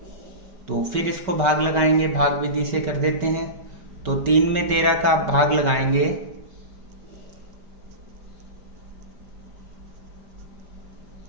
तो फिर इसको भाग लगाएंगे, भाग विधि से कर देते हैं। तो 3 में 13 का भाग लगाएंगे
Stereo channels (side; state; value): left; late; 5.3 ms